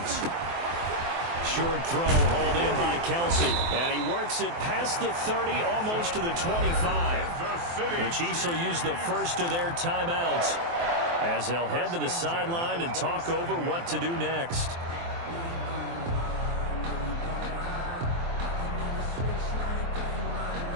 Short throw hauled in by Kelsey. And he works it past the 30, almost to the 25. The Chiefs will use the first of their timeouts as they'll head to the sideline and talk over what to do next.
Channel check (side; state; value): left; late; 23 ms